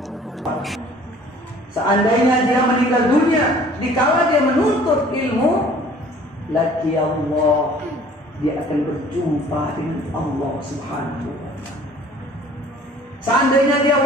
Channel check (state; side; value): normal; both; correlation 0.52